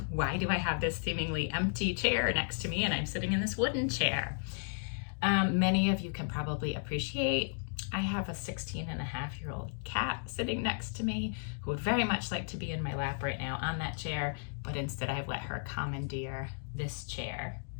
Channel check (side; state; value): right; silent; digital silence